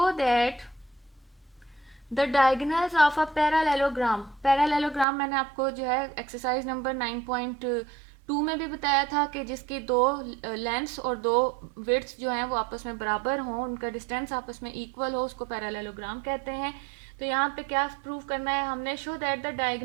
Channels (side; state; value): left; drops out; at 5.1 s